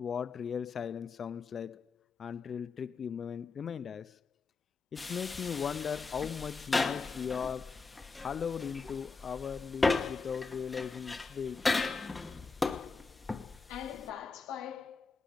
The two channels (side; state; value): right; quieter; 4.5 dB